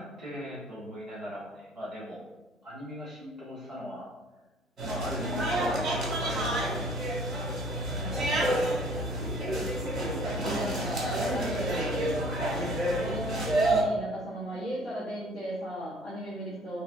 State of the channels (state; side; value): normal; both; correlation 0.52